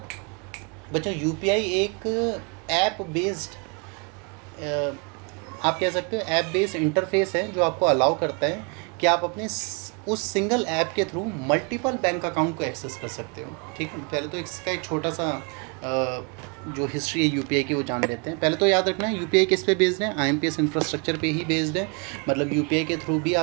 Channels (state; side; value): quieter; left; 34.7 dB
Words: ऐप बेस्ड, आप कह सकते हो ऐप बेस्ड इंटरफेस है जो आपको अलाउ करता है कि आप अपने उस सिंगल ऐप के थ्रू मल्टीपल बैंक अकाउंट को एक्सेस कर सकते हो, ठीक है। पहले तो इसका एक छोटा सा जो हिस्ट्री है यूपीआई की वो जान लेते हैं। पहले तो याद रखना है यूपीआई किस पे बेस्ड है? आईएमपीएस इंफ्रास्ट्रक्चर पे ही बेस्ड है। मतलब यूपीआई के थ्रू भी